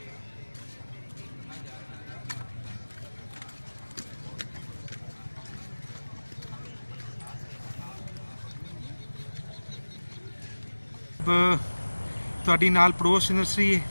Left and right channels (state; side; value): inverted; both; correlation -1.00